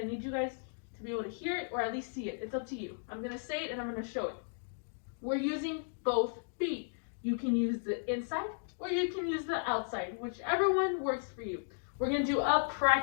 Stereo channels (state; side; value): silent; right; digital silence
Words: need you guys to be able to hear it or at least see it. It's up to you. I'm gonna say it and I'm gonna show it. We're using both feet. You can use the inside or you can use the outside, whichever one works for you. We're gonna do a